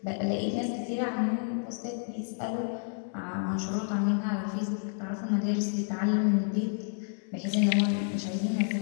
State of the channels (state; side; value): silent; right; 58 dB below the other